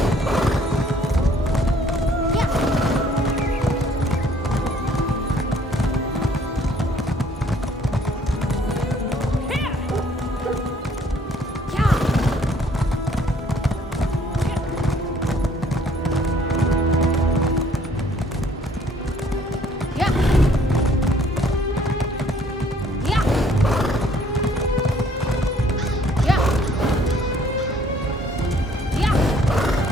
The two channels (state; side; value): normal; both; correlation 0.60